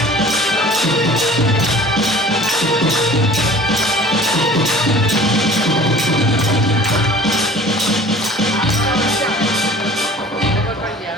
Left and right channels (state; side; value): normal; both; correlation 0.45